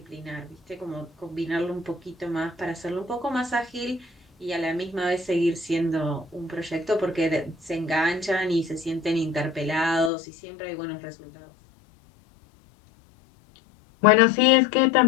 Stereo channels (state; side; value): drops out; right; at 10.1 s